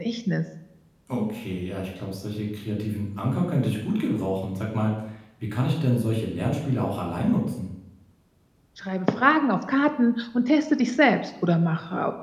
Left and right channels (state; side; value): identical; both; correlation 1.00